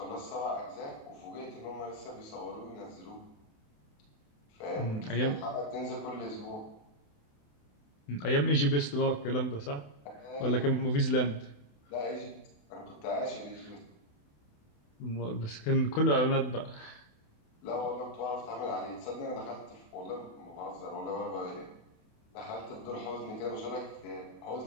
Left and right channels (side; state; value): right; late; 28 ms